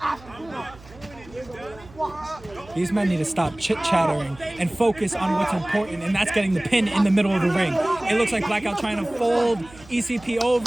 These men need to stop chit-chattering and focus on what's important, and that's getting the pin in the middle of the ring. It looks like Blackout trying to fold ECP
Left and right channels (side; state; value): right; noise; hum, 22 dB below the sound